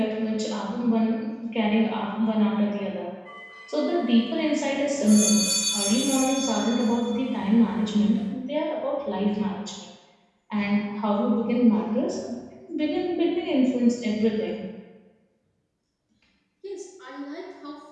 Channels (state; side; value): identical; both; correlation 1.00